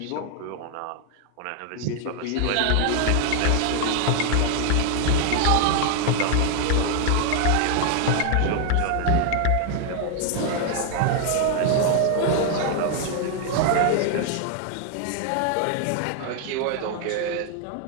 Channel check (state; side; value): different; both; correlation 0.00